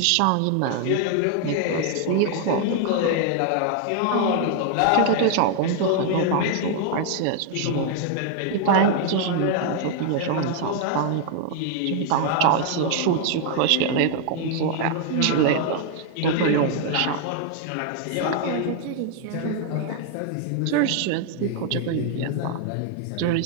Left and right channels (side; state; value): both; different; correlation 0.00